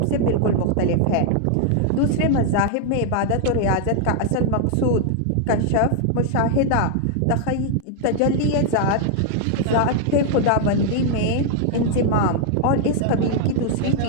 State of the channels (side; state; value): both; different; correlation 0.00